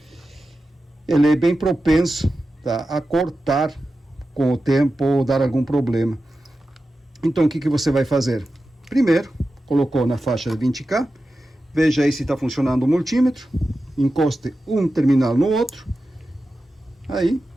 Ele é bem propenso, tá, a cortar com o tempo ou dar algum problema. Então o que você vai fazer? Primeiro, colocou na faixa de 20K, veja aí se está funcionando o multímetro, encoste um terminal no outro, aí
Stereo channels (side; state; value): both; normal; correlation 0.92